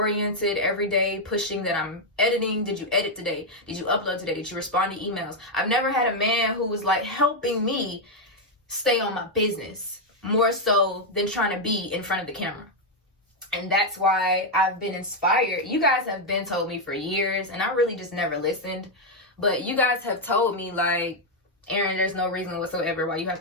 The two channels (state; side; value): normal; both; correlation 0.01